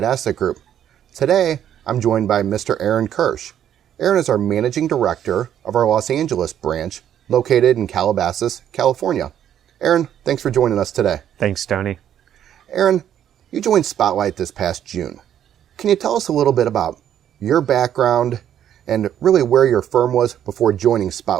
Asset Group. Today, I'm joined by Mr. Aaron Kirsch. Aaron is our Managing Director of our Los Angeles branch, located in Calabasas, California. Aaron, thanks for joining us today. Thanks, Tony. Aaron, you joined Spotlight this past June. Can you tell us a little bit about your background and really where your firm was before joining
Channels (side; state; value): left; quieter; 10.2 dB